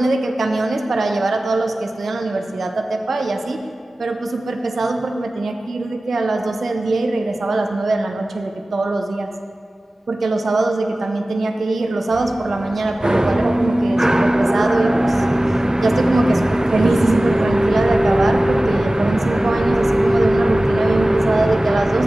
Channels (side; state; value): both; normal; correlation 0.97